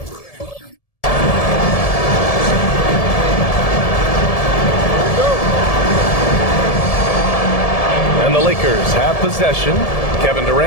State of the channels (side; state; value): right; late; 1.7 ms